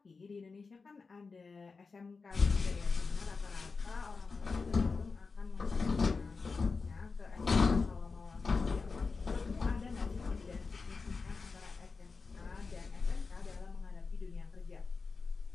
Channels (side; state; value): right; quieter; 4.5 dB